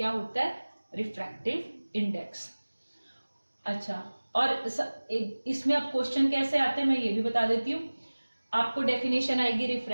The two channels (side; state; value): both; inverted; correlation -1.00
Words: होता है? Refractive index. अच्छा, और इसमें अब क्वेश्चन कैसे आते हैं मैं ये भी बता देती हूँ। आपको डेफिनेशन आएगी